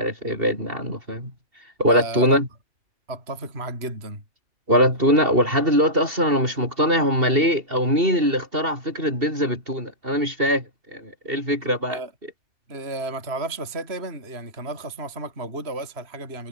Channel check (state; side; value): late; left; 2.7 ms